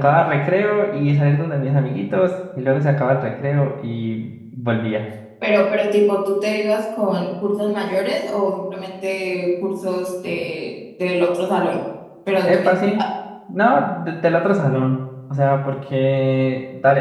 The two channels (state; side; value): identical; both; correlation 1.00